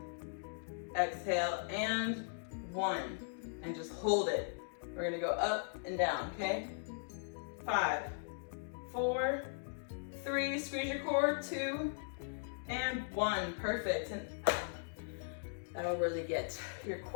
exhale, and 1, and just hold it. We're gonna go up and down, okay? 5, 4, 3, squeeze your core, 2, and 1, perfect. And that'll really get your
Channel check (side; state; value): right; silent; digital silence